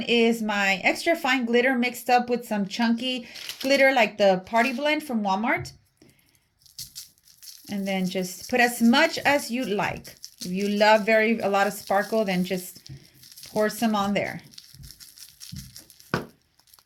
is my extra fine glitter mixed up with some chunky glitter like the Party Blend from Walmart. And then just put as much as you like. If you love a lot of sparkle, then just pour some on there.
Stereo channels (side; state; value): both; identical; correlation 1.00